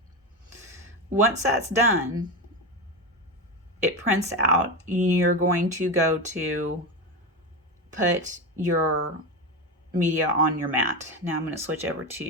Once that's done, it prints out. You're going to go to put your media on your mat. Now I'm going to switch over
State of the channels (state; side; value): normal; both; correlation 0.18